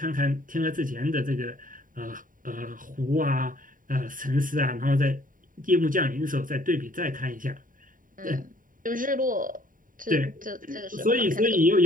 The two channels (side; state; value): left; late; 0.39 ms